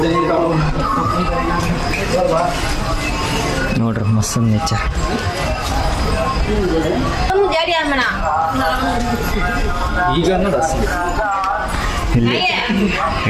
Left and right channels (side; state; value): both; identical; correlation 1.00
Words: ನೋಡ್ರಿ ಮಸ್ತ್ ನೇಚರ್. ಈಗ ಇಲ್ಲಿ